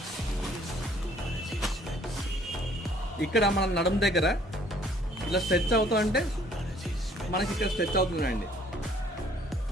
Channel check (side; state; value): both; normal; correlation 0.59